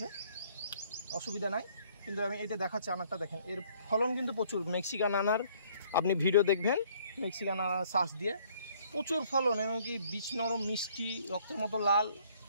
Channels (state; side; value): inverted; both; correlation -0.61